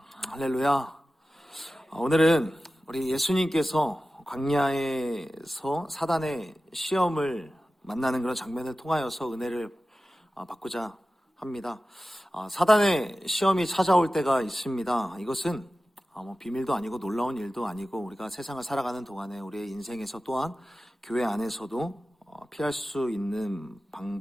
할렐루야. 오늘은 우리 예수님께서 광야에서 사단의 시험을 만나는 그런 장면을 통하여서 은혜를 받고자 합니다. 사단의 시험이 찾아올 때가 있습니다. 이것은 비밀도 아니고 놀라운 일도 아니고 우리가 세상을 살아가는 동안에 우리의 인생에서 또한 교회 안에서도 피할 수 있는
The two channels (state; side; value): normal; both; correlation 0.95